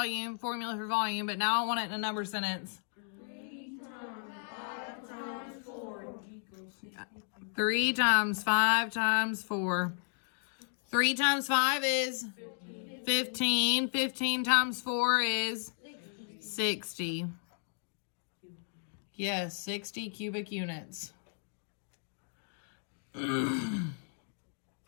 formula for volume, but now I want it in a number sentence. 3 times 5 times 4 equals 3 times 5 times 4. 3 times 5 is 15. 15 times 4 is 60. Yes, 60 cubic units.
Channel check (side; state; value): right; silent; 55 dB below the other